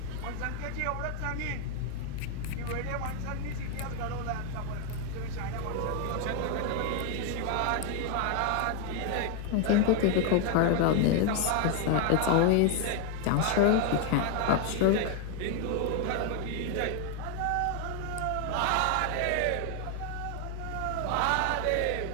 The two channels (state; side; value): different; both; correlation 0.01